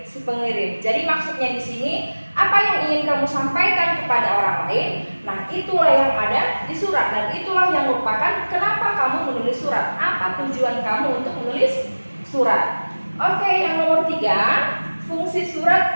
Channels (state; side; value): inverted; both; correlation -1.00